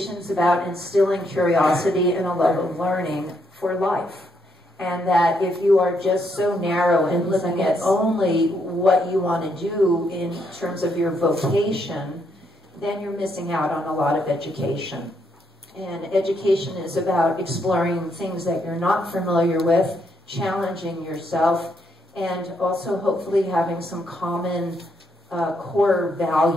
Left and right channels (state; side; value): normal; both; correlation 0.76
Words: is about instilling curiosity and a love of learning for life. And that if you are just so narrow and looking at only what you want to do in terms of your vocation, then you're missing out on a lot of education. And education is about exploring things that you're not familiar with, challenging yourself, and also hopefully having some common core